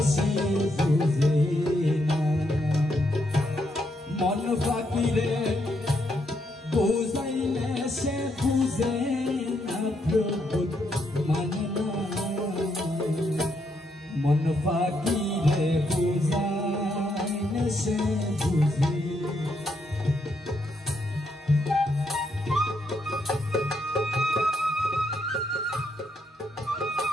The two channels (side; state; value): both; normal; correlation 0.77